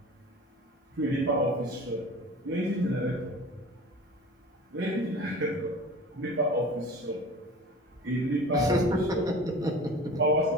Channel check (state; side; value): normal; both; correlation 0.39